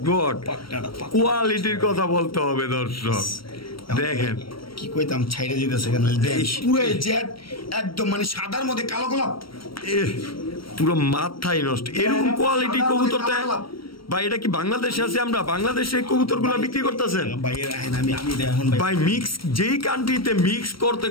গড, কোয়ালিটির কথা বলতে হবে দর্শক। দেখেন কি কইতাম, ছাইড়া যেতেছে কেন, পুরো জেট একদম মানে সাদার মধ্যে কালো গোলাপ, পুরো মাথায় নষ্ট। এরকম কোয়ালিটি কবুতর ভাই, এটা কি বাংলাদেশে আছে? আমরা বাংলাদেশে কবুতর গুলা বিক্রি করতেছেন ভাই? মিক্স যেই কান্ট্রিতে মিক্স করতে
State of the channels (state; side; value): late; right; 0.74 ms